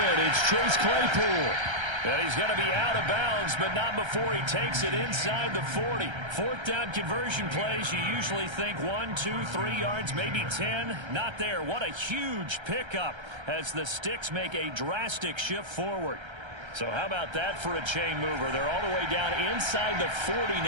It's Chase Claypool. And he's going to be out of bounds, but not before he takes it inside the 40. Fourth down conversion plays, you usually think 1, 2, 3 yards, maybe 10. Not there. What a huge pickup as the Sticks make a drastic shift forward. So how about that for a chain mover? They're all the way down inside the 40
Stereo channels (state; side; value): late; left; 1.3 ms